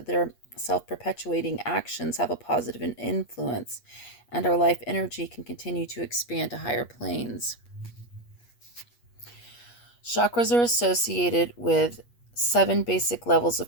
their self perpetuating actions have a positive influence and our life energy can continue to expand to higher planes. Chakras are associated with 7 basic levels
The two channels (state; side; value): late; right; 8.4 ms